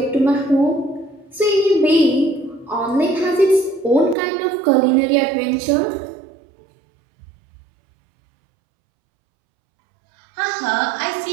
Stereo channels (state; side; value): drops out; left; at 4.2 s